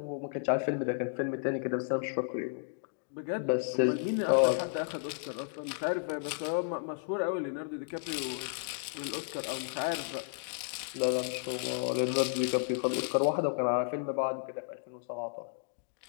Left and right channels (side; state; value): right; silent; digital silence